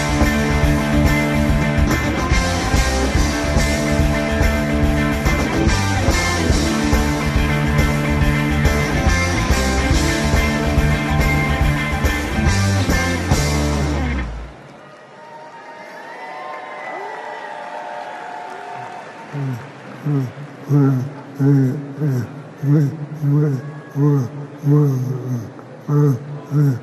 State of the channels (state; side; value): identical; both; correlation 1.00